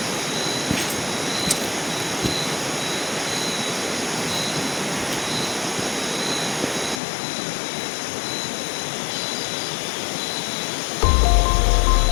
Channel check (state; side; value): drops out; right; at 7.0 s